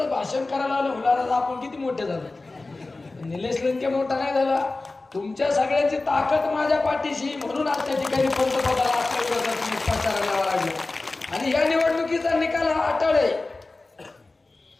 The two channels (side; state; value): right; quieter; 3.3 dB